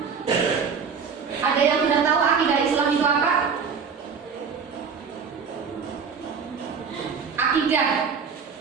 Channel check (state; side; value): quieter; left; 6.0 dB